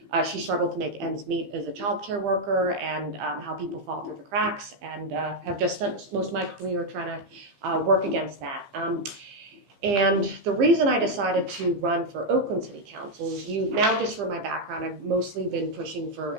she struggled to make ends meet as a child care worker, and how people fall through the cracks, and have just spent most of my career trying to work against that. And the reason I decided to run for Oakland City Council is just for my background, I've mostly been pushing for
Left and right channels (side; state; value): left; late; 15 ms